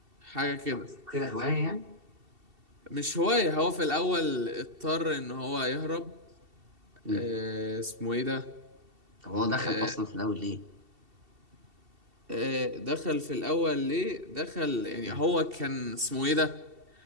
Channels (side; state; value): left; late; 2.7 ms